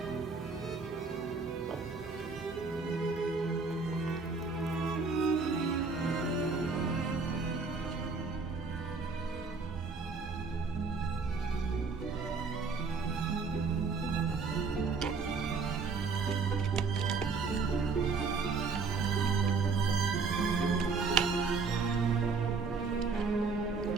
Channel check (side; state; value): left; quieter; 4.7 dB